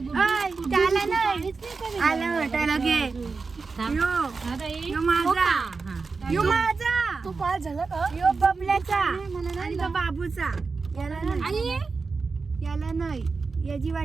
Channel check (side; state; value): left; quieter; 4.4 dB